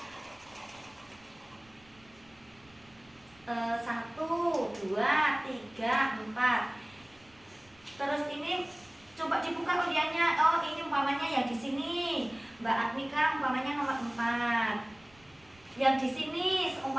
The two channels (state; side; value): noise; right; rumble, 29 dB below the sound